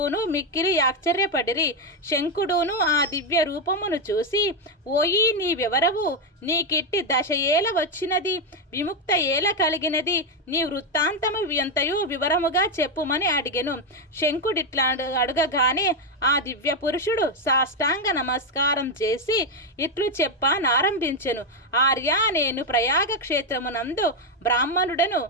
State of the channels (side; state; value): both; normal; correlation 0.05